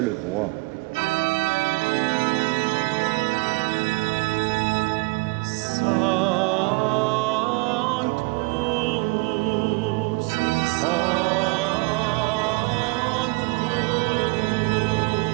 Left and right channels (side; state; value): left; quieter; 25.9 dB